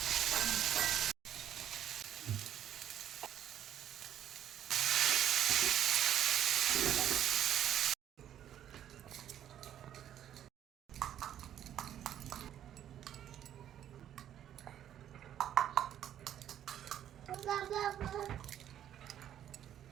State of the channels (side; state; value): left; quieter; 10.7 dB